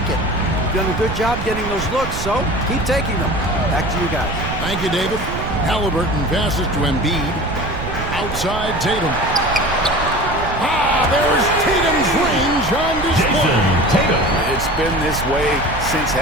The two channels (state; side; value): noise; right; rumble, 8 dB below the sound